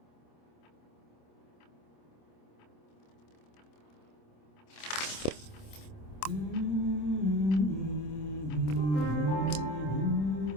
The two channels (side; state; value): right; late; 26 ms